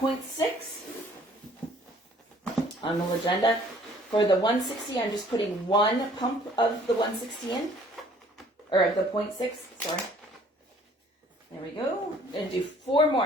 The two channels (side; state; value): both; normal; correlation 0.57